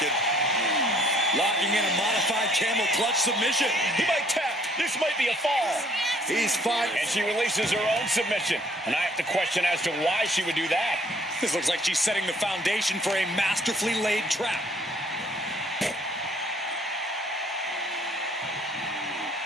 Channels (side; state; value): both; normal; correlation 0.61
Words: and locking in a modified camel clutch submission. He might tap. This might be a fall. He's fine. And she releases her own submission. And I have to question as to why she would do that. This looks like she's setting the foundation for a masterfully laid trap.